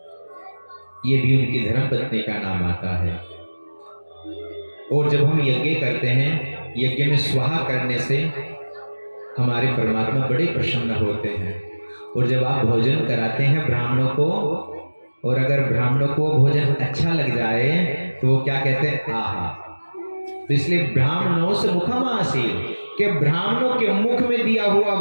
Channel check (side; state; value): both; inverted; correlation -1.00